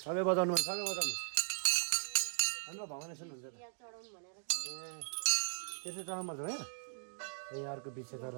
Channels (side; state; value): left; silent; digital silence